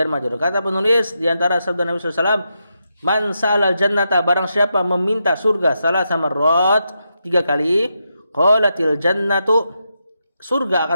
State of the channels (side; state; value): both; inverted; correlation -0.85